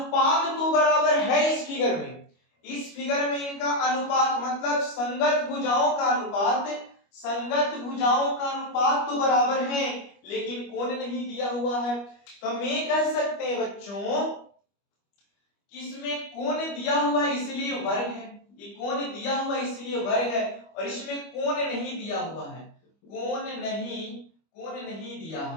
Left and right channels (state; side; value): late; right; 25 ms